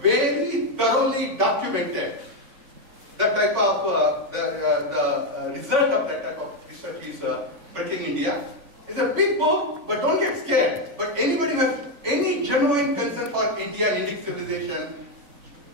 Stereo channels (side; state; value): left; late; 3.5 ms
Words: thoroughly documented. That type of, the result of that type of research is Breaking India. It's a big book, but don't get scared. But anybody who has any genuine concern for India and Indic civilization,